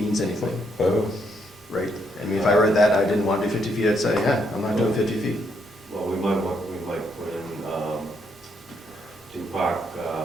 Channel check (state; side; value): normal; both; correlation 0.75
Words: anything, Oh, right? I mean, if I read that, and I didn't want to do 50 feet, I'd say, yeah, I'm not doing 50 feet. Well, we might put in, to park,